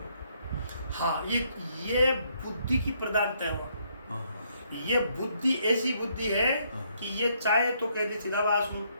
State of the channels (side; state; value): both; inverted; correlation -0.71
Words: हाँ, ये बुद्धि की प्रधानता है। हाँ, ये बुद्धि ऐसी बुद्धि है कि ये चाहे तो कह दे चिदाभास हूँ,